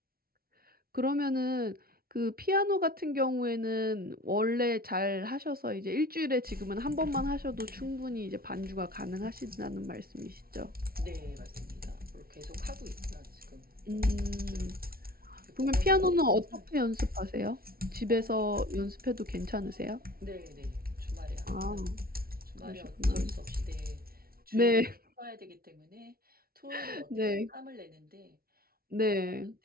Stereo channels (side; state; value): left; late; 0.44 ms